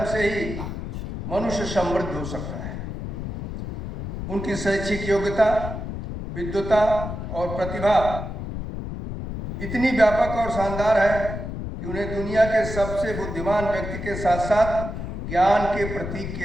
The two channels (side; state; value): left; noise; rumble, 6 dB below the sound